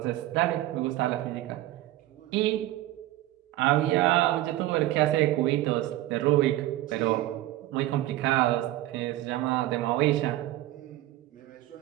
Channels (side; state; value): left; quieter; 15.5 dB